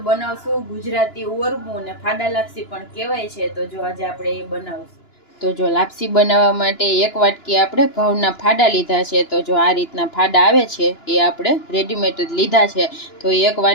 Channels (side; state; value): right; late; 2.9 ms